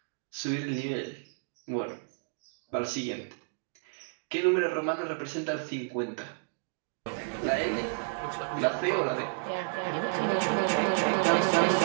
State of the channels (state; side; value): silent; left; digital silence